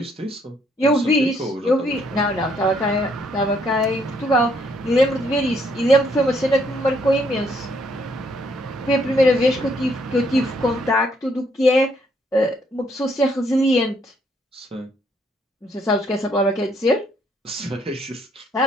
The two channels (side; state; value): both; normal; correlation 0.70